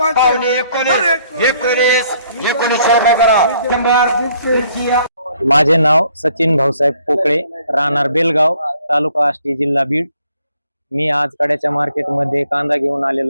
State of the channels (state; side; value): inverted; both; correlation -0.65